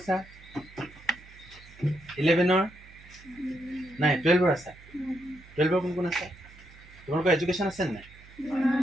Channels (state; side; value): noise; right; hum, 22 dB below the sound